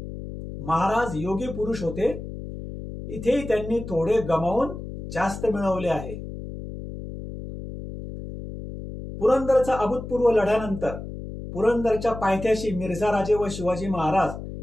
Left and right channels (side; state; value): left; noise; hum, 10 dB below the sound